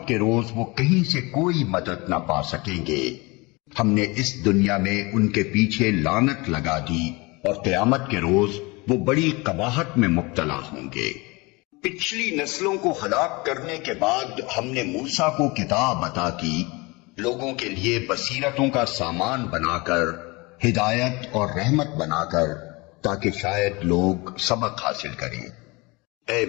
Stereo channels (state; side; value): quieter; right; 25.3 dB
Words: کے روز وہ کہیں سے کوئی مدد نہ پا سکیں گے۔ ہم نے اس دنیا میں ان کے پیچھے لعنت لگا دی، اور قیامت کے روز وہ بڑی قباحت میں مبتلا ہوں گے۔ پچھلی نسلوں کو ہلاک کرنے کے بعد ہم نے موسیٰ کو کتاب عطا کی، لوگوں کے لیے بصیرتوں کا سامان بنا کر، ہدایت اور رحمت بنا کر، تاکہ شاید لوگ سبق حاصل کریں۔ اے